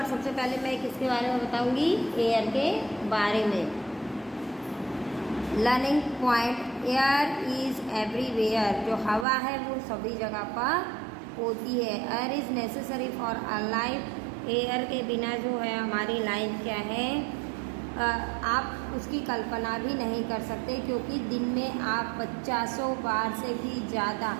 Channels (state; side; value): drops out; left; at 9.2 s